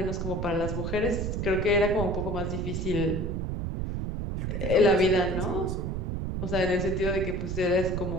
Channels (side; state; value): right; noise; rumble, 2 dB below the sound